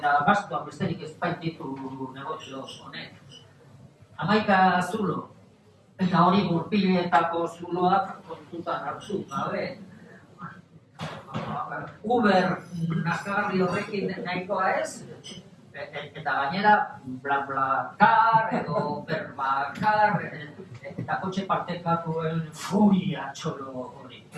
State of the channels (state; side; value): identical; both; correlation 1.00